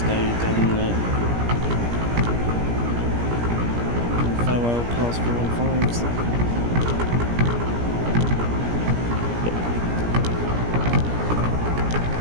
day, then farewell class 315s.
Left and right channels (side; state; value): left; late; 17 ms